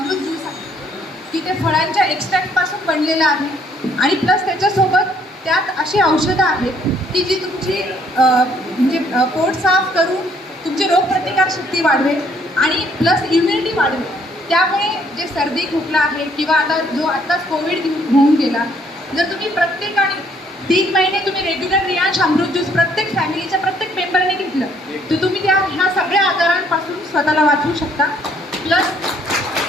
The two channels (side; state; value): both; normal; correlation 0.65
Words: ज्यूस आहे की ते फळांच्या एक्स्ट्रॅक्टपासून बनलेलं आहे आणि प्लस त्याच्यासोबत त्यात अशी औषधं आहेत की जी तुमची म्हणजे पोट साफ करून तुमची रोगप्रतिकारशक्ती वाढवेल आणि प्लस इम्युनिटी वाढवेल. त्यामुळे जे सर्दी खोकला आहे किंवा आत्ताच कोविड होऊन गेला, जर तुम्ही प्रत्येकाने 3 महिने तुम्ही रेग्युलर रियांश अमृत ज्यूस प्रत्येक फॅमिलीच्या प्रत्येक मेंबरने घेतलं तर तुम्ही ह्या सगळ्या आजारांपासून स्वतःला वाचवू शकता. प्लस